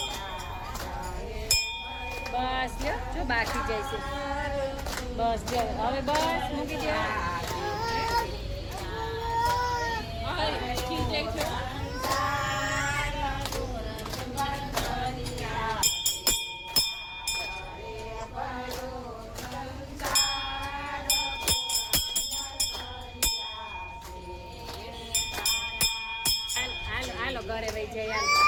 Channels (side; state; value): both; identical; correlation 1.00